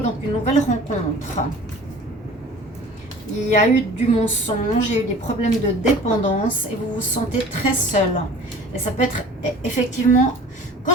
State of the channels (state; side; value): normal; both; correlation 0.45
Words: une nouvelle rencontre. Il y a eu du mensonge, il y a eu des problèmes de dépendance et vous vous sentez très seul. Et ça peut être effectivement... Quand